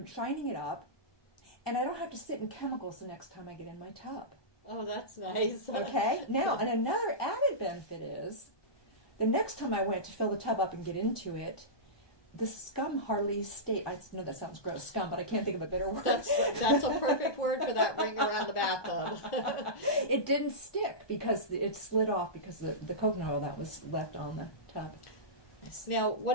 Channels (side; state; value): right; late; 1.2 ms